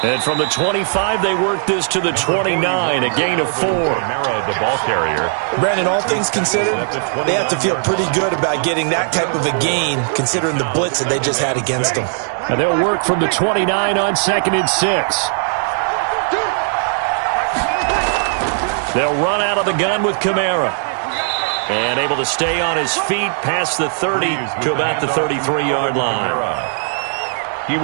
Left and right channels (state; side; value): silent; left; digital silence